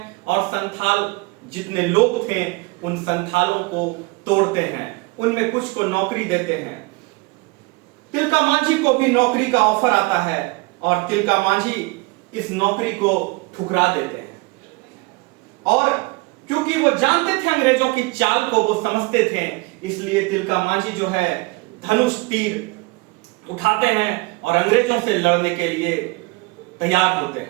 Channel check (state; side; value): quieter; left; 25.2 dB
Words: और संथाल जितने लोग थे उन संथालों को तोड़ते हैं, उनमें कुछ को नौकरी देते हैं। तिलका मांझी को भी नौकरी का ऑफर आता है और तिलका मांझी इस नौकरी को ठुकरा देते हैं। और क्योंकि वो जानते थे अंग्रेजों की चाल को, वो समझते थे, इसलिए तिलका मांझी जो है धनुष तीर उठाते हैं और अंग्रेजों से लड़ने के लिए तैयार होते